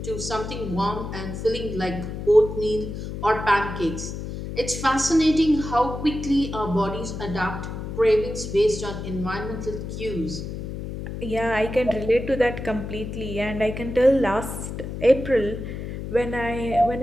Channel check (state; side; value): noise; left; hum, 7 dB below the sound